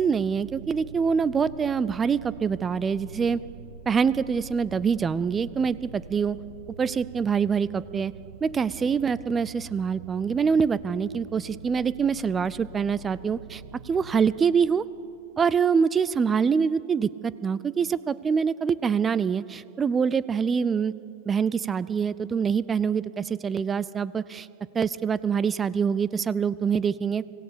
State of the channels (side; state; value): left; quieter; 6.0 dB